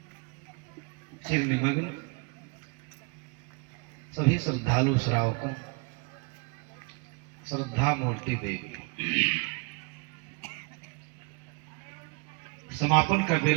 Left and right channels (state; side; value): quieter; left; 31.5 dB